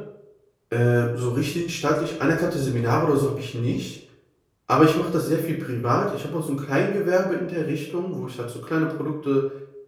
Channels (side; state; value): both; identical; correlation 1.00